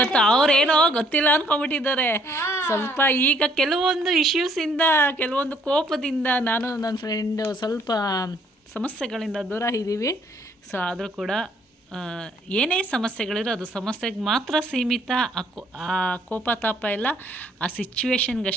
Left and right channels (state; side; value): normal; both; correlation 0.64